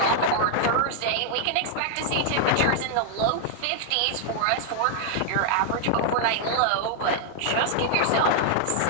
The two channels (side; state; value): both; different; correlation 0.00